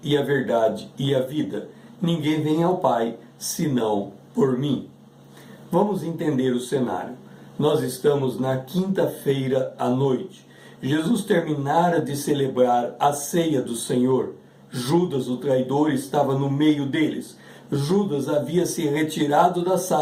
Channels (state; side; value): identical; both; correlation 1.00